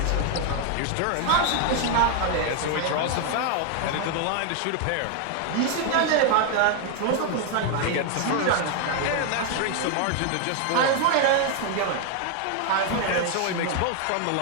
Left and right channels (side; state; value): both; different; correlation 0.00